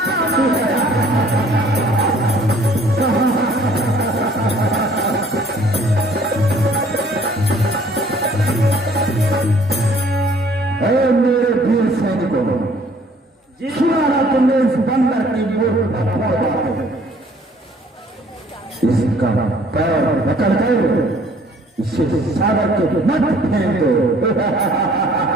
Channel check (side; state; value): both; normal; correlation 0.58